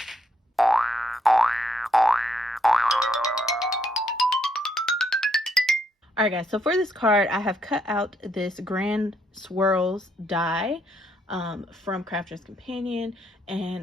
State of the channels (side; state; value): both; normal; correlation 0.74